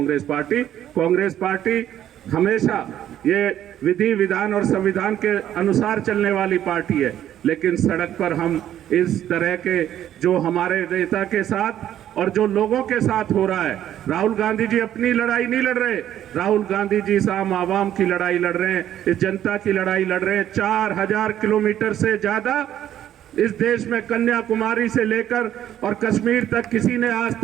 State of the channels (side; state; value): left; quieter; 11.3 dB